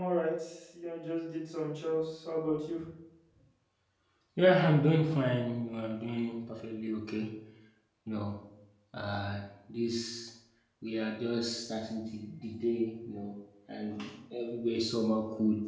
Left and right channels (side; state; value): both; identical; correlation 1.00